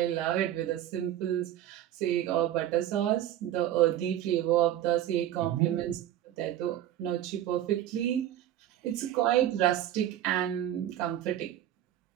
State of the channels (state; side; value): quieter; left; 12.2 dB